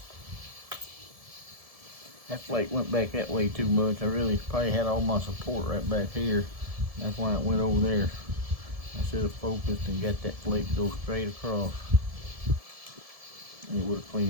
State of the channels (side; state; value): left; late; 1.7 ms